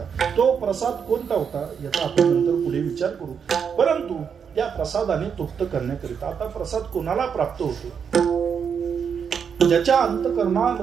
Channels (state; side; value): quieter; left; 6.9 dB